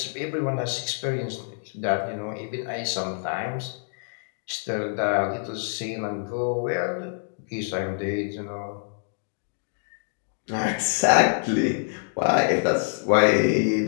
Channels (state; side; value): silent; right; digital silence